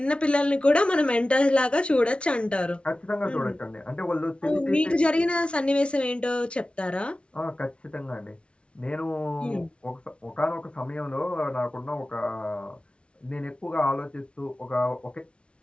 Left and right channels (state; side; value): late; right; 0.059 ms